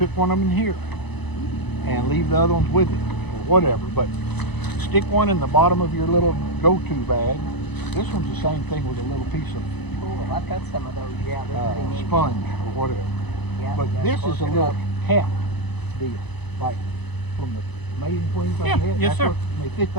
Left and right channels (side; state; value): right; late; 0.99 ms